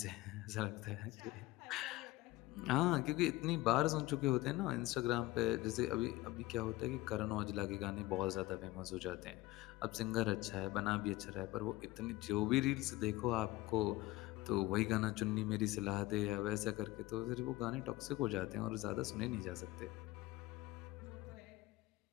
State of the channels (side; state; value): right; quieter; 18.5 dB